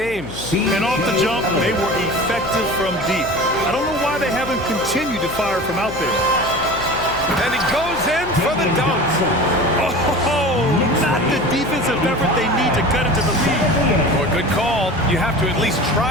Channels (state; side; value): noise; left; hum, 13 dB below the sound